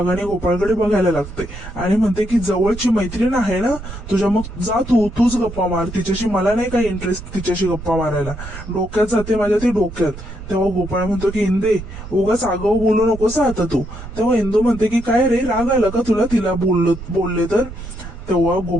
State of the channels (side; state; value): right; noise; rumble, 12 dB below the sound